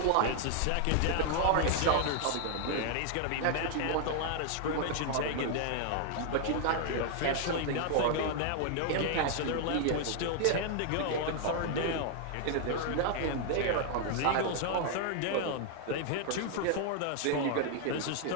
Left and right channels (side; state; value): both; different; correlation 0.00